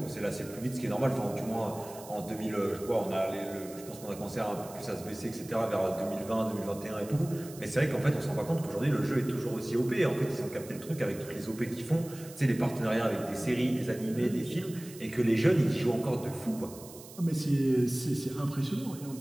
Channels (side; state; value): right; noise; hiss, 17 dB below the sound